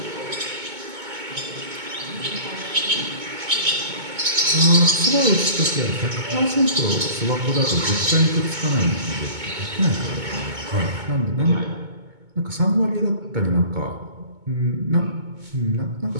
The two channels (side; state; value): left; late; 2.2 ms